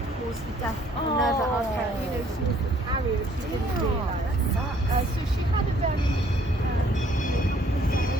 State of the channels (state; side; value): normal; both; correlation 0.61